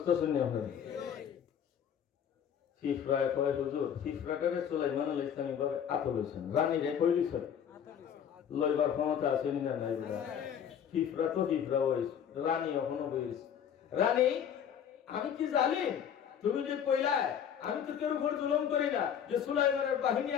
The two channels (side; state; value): right; quieter; 8.6 dB